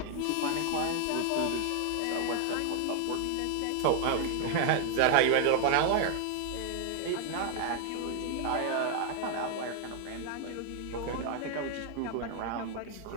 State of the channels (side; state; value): both; different; correlation 0.00